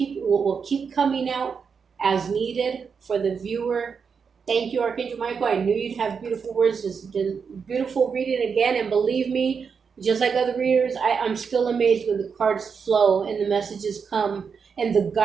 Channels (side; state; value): left; quieter; 6.0 dB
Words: coming out as needed for the viewer. Thank you, Archangel Michael. I knew you'd have beautiful words. This has been beautiful reading again, and believe me, just like other readers, I'm still amazed when the cards flow and the messages come and the